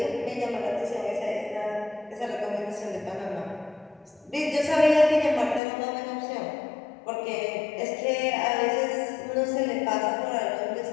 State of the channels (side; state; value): right; drops out; at 5.6 s